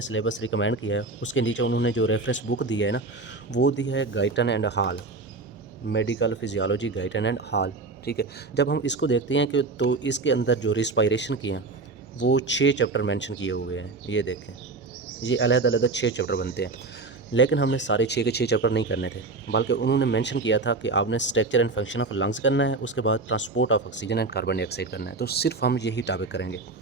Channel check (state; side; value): quieter; left; 3.6 dB